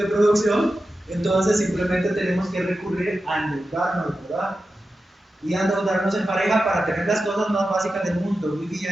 producción, entonces simplemente tenemos que recurrir a endeudarnos, ¿verdad? Y endeudarnos en pareja para tener las cosas más básicas del mundo,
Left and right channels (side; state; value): both; normal; correlation 0.92